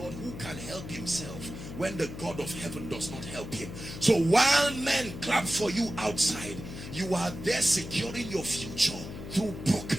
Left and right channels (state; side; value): noise; left; hum, 10 dB below the sound